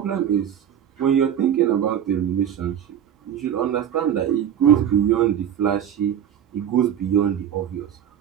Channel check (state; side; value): quieter; left; 9.5 dB